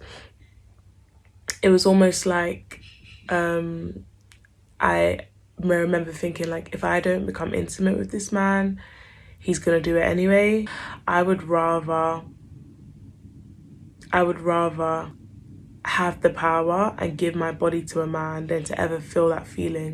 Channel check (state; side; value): identical; both; correlation 1.00